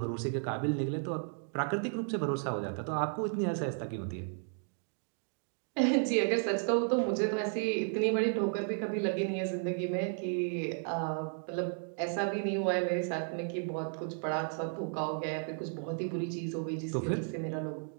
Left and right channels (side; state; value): left; silent; 55 dB below the other